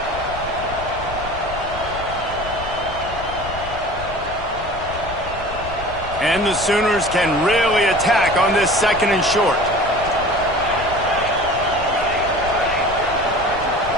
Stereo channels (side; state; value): left; noise; rumble, 12 dB below the sound